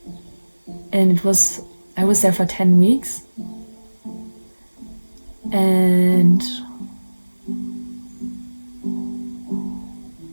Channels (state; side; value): inverted; both; correlation -1.00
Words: it was, I was there for 10 weeks. And